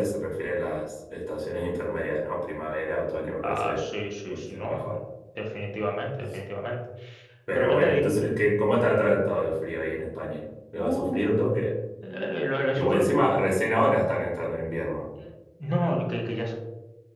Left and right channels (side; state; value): both; identical; correlation 1.00